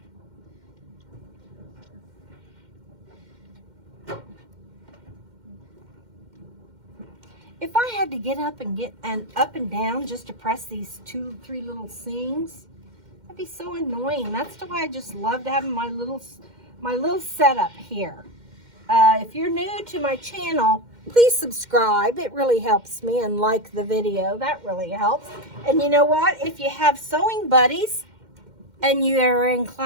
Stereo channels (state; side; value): late; left; 2.1 ms